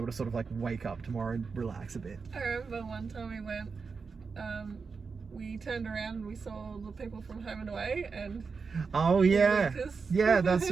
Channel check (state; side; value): quieter; left; 5.0 dB